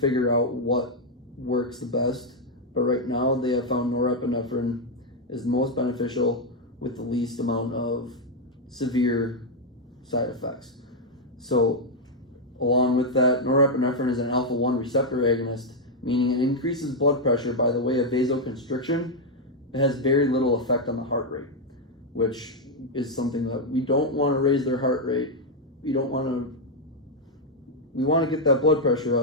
out what works the best, but right now they have found norepinephrine is the most beneficial with the least amount of severe side effects. So along with that, norepinephrine is an alpha-1 receptor agonist, meaning it increases blood pressure by the way of vasoconstriction. It has very little effect on the heart rate, which is something that we don't want to raise their heart rate. We want to get that blood pressure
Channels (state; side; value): normal; both; correlation 0.00